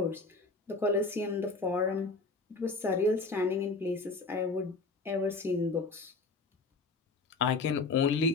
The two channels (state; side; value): quieter; right; 3.8 dB